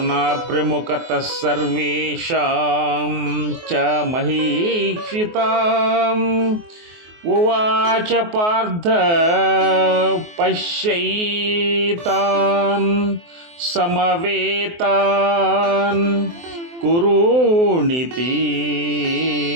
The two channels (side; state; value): left; late; 24 ms